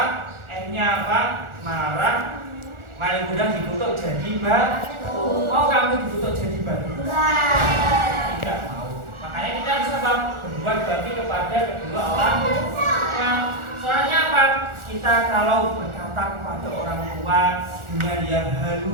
Akhirnya apa? Marah. Malik mudah dikutuk jadi batu. Mau kamu dikutuk jadi batu? Tidak mau. Makanya kita harus apa? Berbuat bakti kepada kedua orang tua. Soalnya apa? Kita kalau berkata kepada orang tua dengan yang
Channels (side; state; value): left; late; 1.4 ms